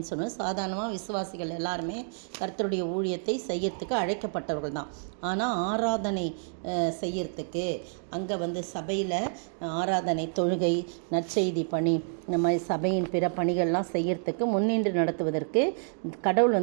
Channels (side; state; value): left; silent; digital silence